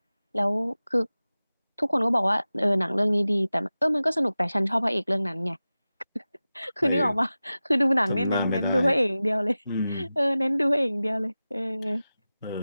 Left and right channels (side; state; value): both; inverted; correlation -0.96